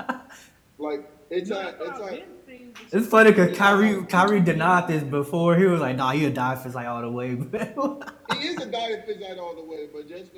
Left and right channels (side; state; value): both; identical; correlation 1.00